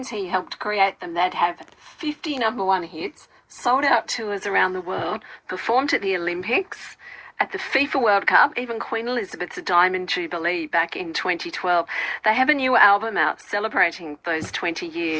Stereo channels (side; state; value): both; identical; correlation 1.00